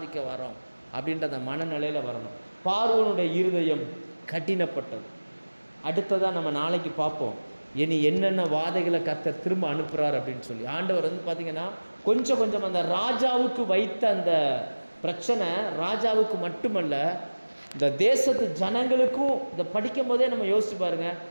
வரோம் அப்படின்ற அந்த மனநிலையில் வரணும். பார்வோனுடைய இருதயம் கடினப்பட்டது. அடுத்ததாக நம்ம நாளைக்கு பார்ப்போம் இனி என்னென்ன வாதைகளை கர்த்தர் திரும்ப அனுப்புகிறார் அப்படின்னு சொல்லி. ஆண்டவர் பார்த்திங்கன்னா கொஞ்சம் கொஞ்சம் அந்த ராஜாவுக்கு வைத்த அந்த பிரச்சனை ராஜாவுக்கு மட்டுமல்ல, இந்த தேசத்து ஜனங்களுக்கும். இந்த படிக்கும் போதே நம்ம யோசிச்சு பாருங்கள்,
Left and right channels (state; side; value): inverted; both; correlation -1.00